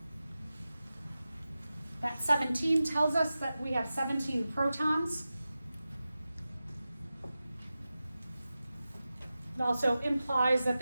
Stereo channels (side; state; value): both; inverted; correlation -0.94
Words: That 17 tells us that we have 17 protons. It also implies that